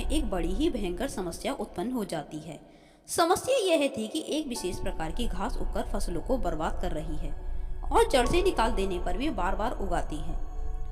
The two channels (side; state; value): both; identical; correlation 1.00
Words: एक बड़ी ही भयंकर समस्या उत्पन्न हो जाती है। समस्या यह थी कि एक विशेष प्रकार की घास उगकर फसलों को बर्बाद कर रही है और जड़ से निकाल देने पर भी बार बार उगाती है।